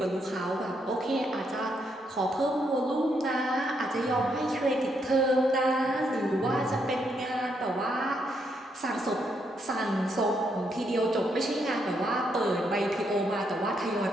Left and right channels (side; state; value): both; normal; correlation 0.77